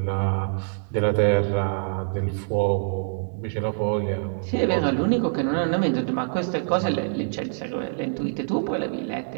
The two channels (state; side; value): silent; left; digital silence